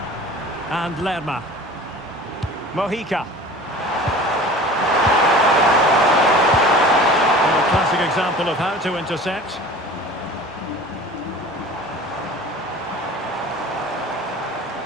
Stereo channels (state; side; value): normal; both; correlation 0.41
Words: And Lerma. Mojica. A classic example of how to intercept.